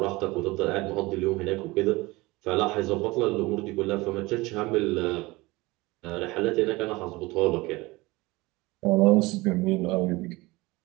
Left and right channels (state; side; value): quieter; left; 21.9 dB